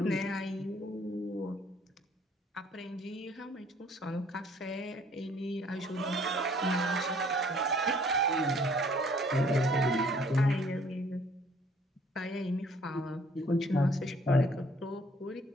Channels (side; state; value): both; normal; correlation 0.60